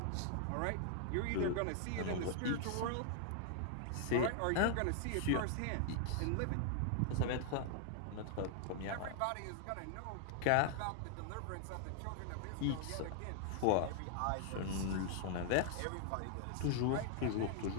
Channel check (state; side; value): different; both; correlation 0.00